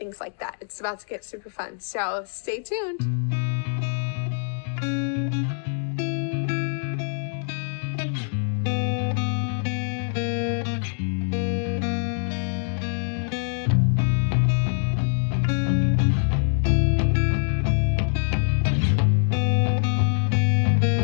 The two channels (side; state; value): right; silent; 62 dB below the other